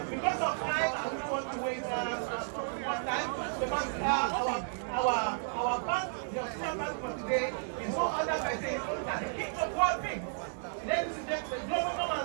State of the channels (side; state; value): left; silent; digital silence